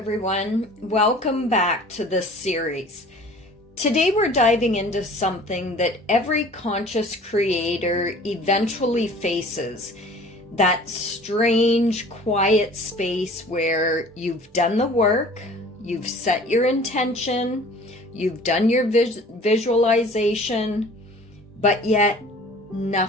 welcome back to this series. Today we're diving into something that every conscious creator eventually faces. That strange, quiet space where you've done the work, you've set your intention, you've done your visualization, but yet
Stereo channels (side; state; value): both; normal; correlation 0.47